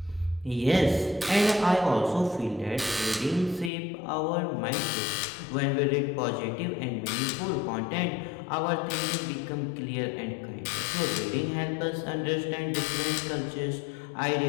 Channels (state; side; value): drops out; right; at 3.7 s